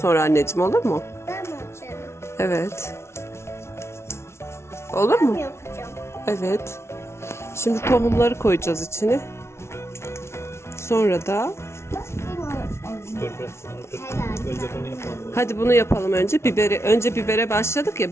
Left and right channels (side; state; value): right; late; 0.13 ms